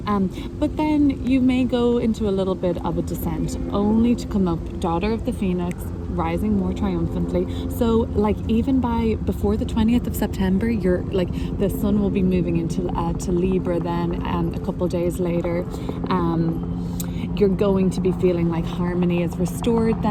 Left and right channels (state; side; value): identical; both; correlation 1.00